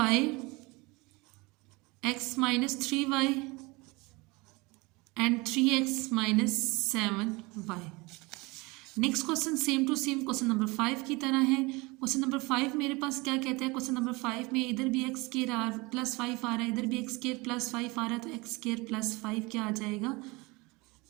x minus 3y and 3x minus 7y। Next question same to same question number 5 की तरह है। क्वेश्चन नंबर 5 मेरे पास क्या कहता है? क्वेश्चन नंबर 5 में इधर भी एक्स स्क्वायर प्लस 5 आ रहा है, इधर भी एक्स स्क्वायर प्लस 5 आ रहा है, तो एक्स स्क्वायर प्लस 5 क्या आ जाएगा?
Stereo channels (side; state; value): left; quieter; 24.8 dB